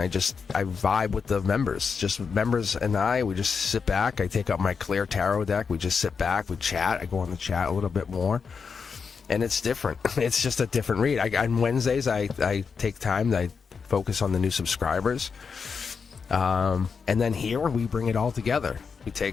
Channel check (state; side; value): quieter; right; 5.7 dB